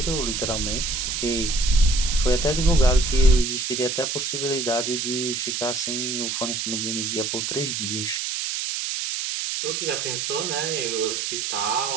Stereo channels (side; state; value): right; noise; hiss, 2 dB below the sound